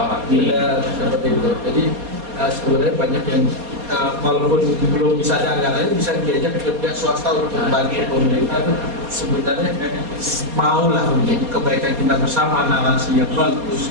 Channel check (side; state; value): left; late; 4.2 ms